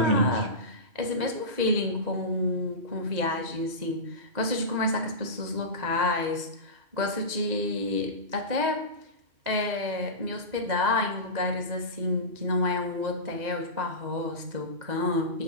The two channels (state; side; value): late; left; 2.0 ms